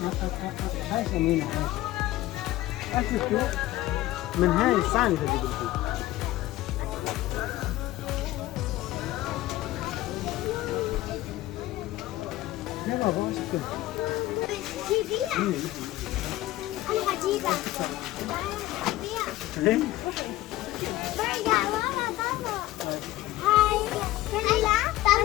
هاي سمينة أشوفوا من هاي الصاني اللي بدي يا بابا وش كده؟ جيبيها أنا هجيبها برجع ورا بابا هاي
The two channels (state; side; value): quieter; right; 16.2 dB